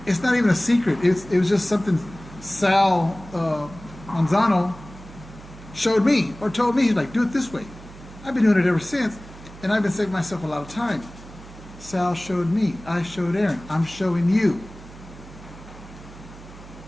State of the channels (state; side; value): noise; right; hum, 18 dB below the sound